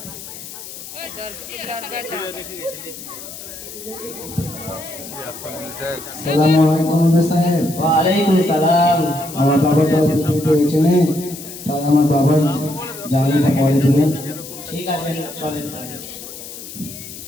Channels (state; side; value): noise; left; hiss, 13 dB below the sound